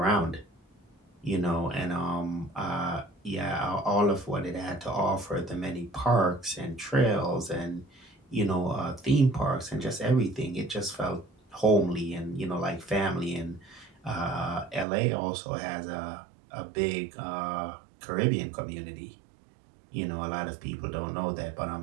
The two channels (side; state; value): left; drops out; at 14.9 s